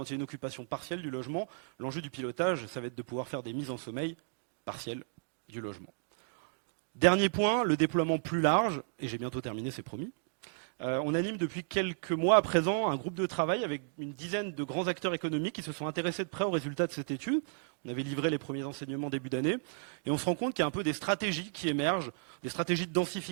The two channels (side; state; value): left; silent; digital silence